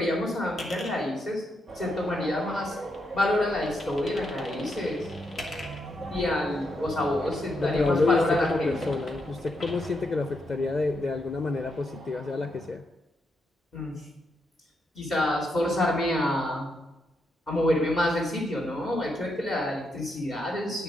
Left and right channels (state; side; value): normal; both; correlation 0.80